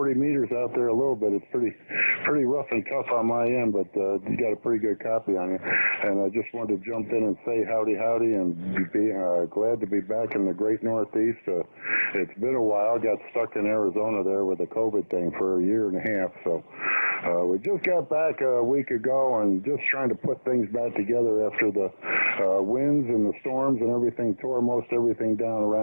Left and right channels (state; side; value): inverted; both; correlation -1.00